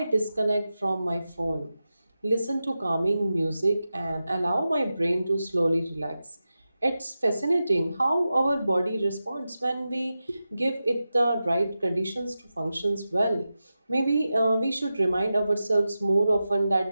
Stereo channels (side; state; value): both; inverted; correlation -0.92